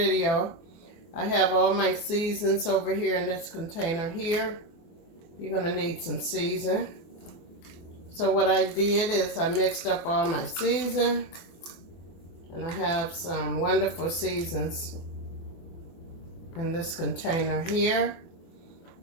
I have all my seasons over here in this container here. You're going to need some season. So what I did is I mixed up all my season. And I have some wonderful seasons in this container here.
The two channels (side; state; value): right; late; 24 ms